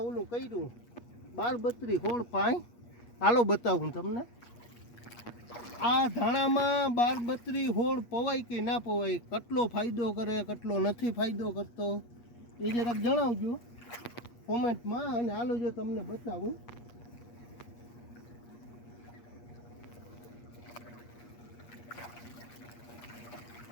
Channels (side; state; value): right; late; 8.4 ms